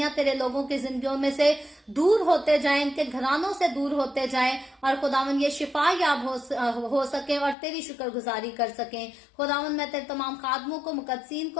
तेरे लोगों की जिंदगियों में से दूर होते जाएं, इनके घरानों से दूर होते जाएं, और खुदावन ये शिफा याब हो सके और तेरी शुक्रगुजारी कर सकें। खुदावन मैं तेरे तमाम खादमों को, मुकद्दसीन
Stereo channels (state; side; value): drops out; right; at 7.6 s